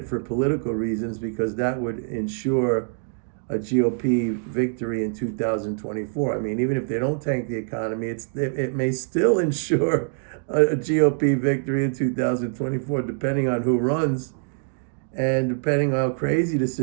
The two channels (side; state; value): left; silent; digital silence